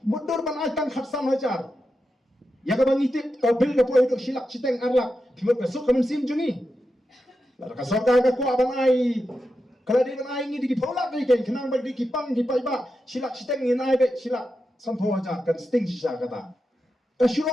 Mudur ban ai tang khatsan hajar. Ya ka bangi tip ka bil ka poi dok silak citeng arlak. Timot ka sok kamen sim jungi. La ka sok ka ku ban ai kalau dia menai ini di polak ni kan, kenang bagi kipang di paiba silak siteng ni naik be silak sampo aja kan sting sisa kata.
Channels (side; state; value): both; normal; correlation 0.88